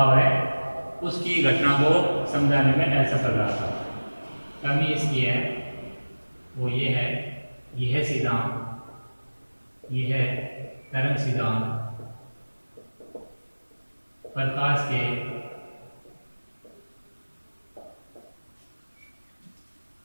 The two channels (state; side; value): inverted; both; correlation -1.00